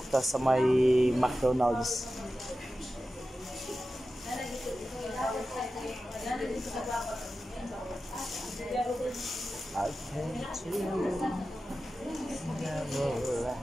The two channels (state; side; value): normal; both; correlation 0.93